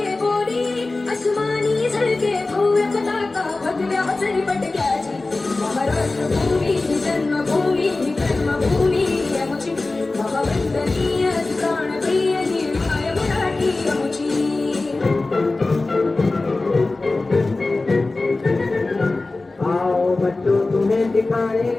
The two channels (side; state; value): right; quieter; 3.3 dB